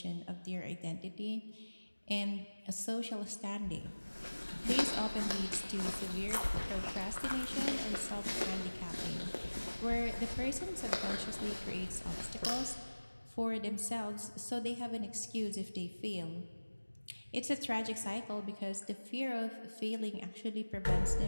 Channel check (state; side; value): inverted; both; correlation -1.00